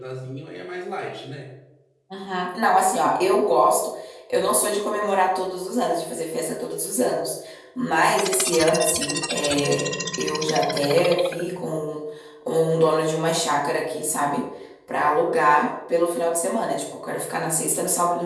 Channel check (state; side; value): identical; both; correlation 1.00